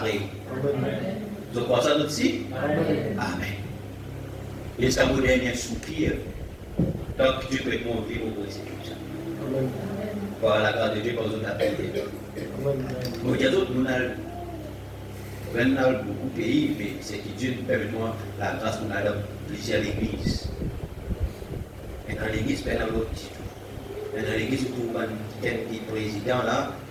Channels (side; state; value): both; identical; correlation 1.00